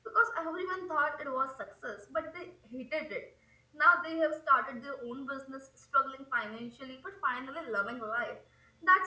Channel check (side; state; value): both; identical; correlation 1.00